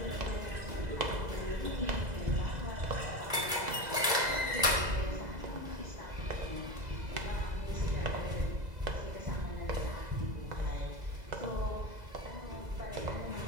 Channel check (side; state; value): left; late; 2.0 ms